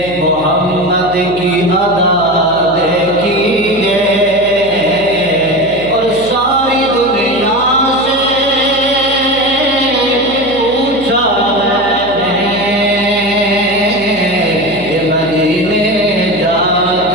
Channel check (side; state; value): left; noise; hum, 16 dB below the sound